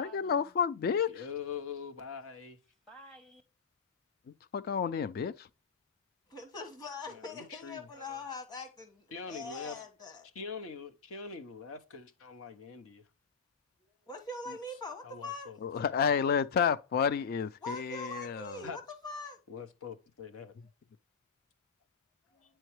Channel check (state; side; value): quieter; right; 6.2 dB